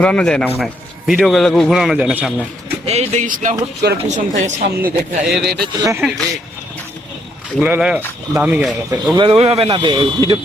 যায় না মনে হয়, ভিডিও গুলো ঘোরানো যায় না সামনে। এই দেখিস না, হুট করে পিছন থেকে সামনে দেখা এর এটা চলে যাবে। ওগুলো হলো দামি গাড়ি, ওগুলো তো ওইভাবে না ভিডিও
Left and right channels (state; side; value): normal; both; correlation 0.73